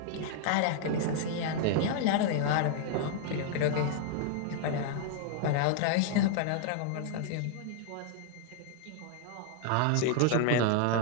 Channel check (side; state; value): both; different; correlation 0.00